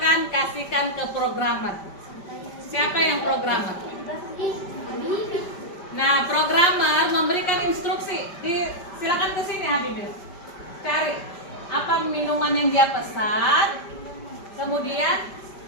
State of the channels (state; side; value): late; right; 5.1 ms